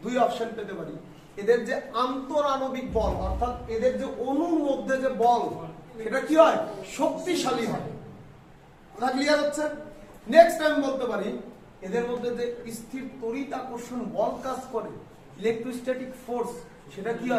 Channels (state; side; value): identical; both; correlation 1.00